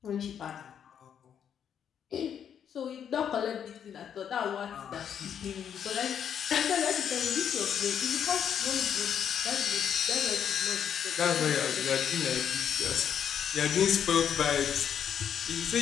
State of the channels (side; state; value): right; quieter; 8.5 dB